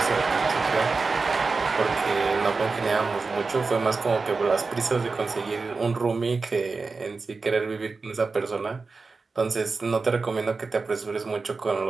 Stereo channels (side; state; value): left; quieter; 4.2 dB